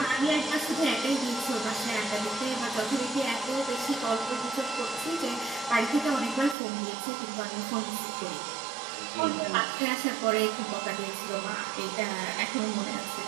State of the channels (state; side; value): drops out; left; at 6.6 s